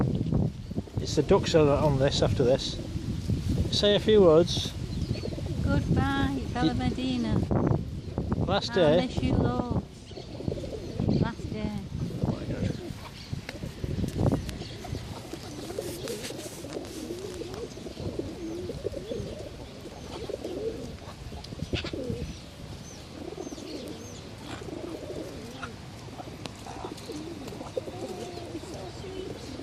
It's the ducks that are on this after this. Say a few words. Goodbye, Bella Medina. Last I day. miss you loads. Last day. Oh my God.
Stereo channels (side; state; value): both; identical; correlation 1.00